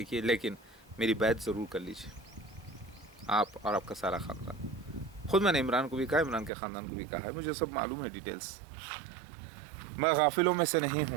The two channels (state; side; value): drops out; left; at 6.5 s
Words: لیکن میری بیعت ضرور کر لیجئے، آپ اور آپ کا سارا خاندان۔ خود میں نے عمران کو بھی کہا، عمران کے خاندان کو بھی کہا ہے، مجھے سب معلوم ہے ڈیٹیلز، میں غافلوں میں سے نہیں